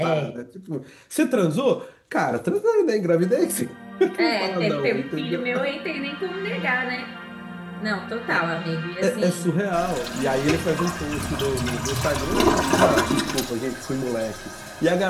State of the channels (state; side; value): identical; both; correlation 1.00